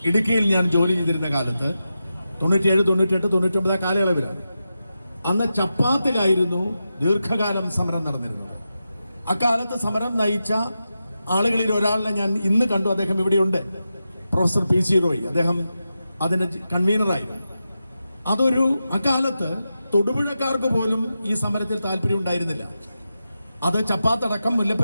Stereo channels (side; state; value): both; inverted; correlation -0.90